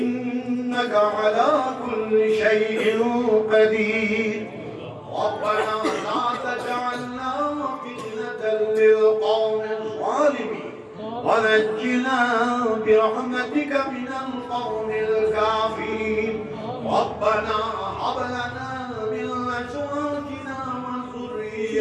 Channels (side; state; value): both; identical; correlation 1.00